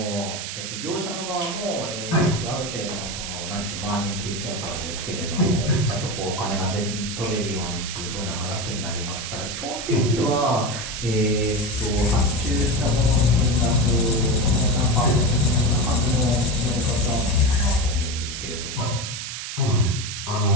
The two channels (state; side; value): noise; right; hiss, 6 dB below the sound